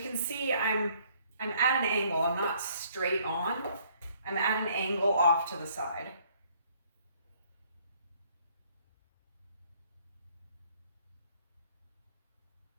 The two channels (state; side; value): inverted; both; correlation -0.63